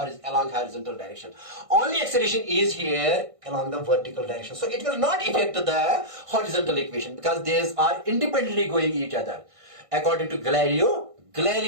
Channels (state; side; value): late; left; 1.5 ms